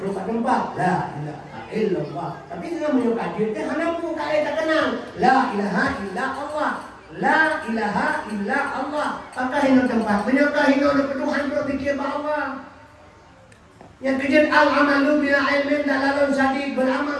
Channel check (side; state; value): both; identical; correlation 1.00